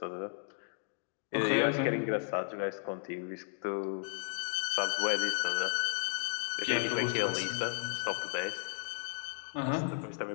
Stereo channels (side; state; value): right; silent; 55 dB below the other